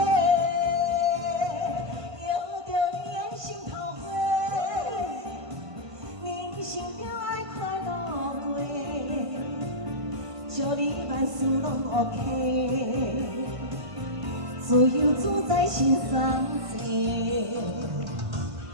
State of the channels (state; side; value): late; left; 1.5 ms